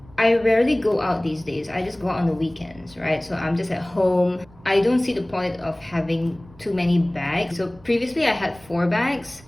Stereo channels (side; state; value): right; noise; rumble, 24 dB below the sound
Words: rarely go out these days. I just go out on the weekends, right? So I'm just at home. I don't see the point of having too many bags. So previously I had 4 bags.